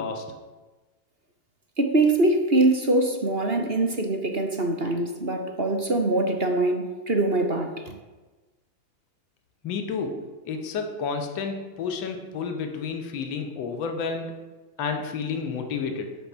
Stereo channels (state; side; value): late; left; 2.8 ms